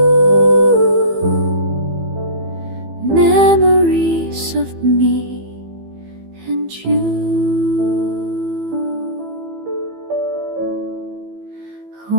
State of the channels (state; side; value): late; left; 15 ms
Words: memories of me and you. A